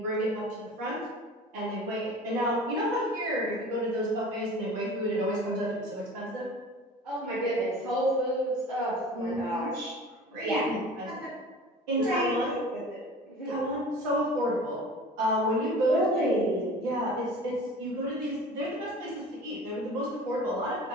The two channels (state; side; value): normal; both; correlation 0.41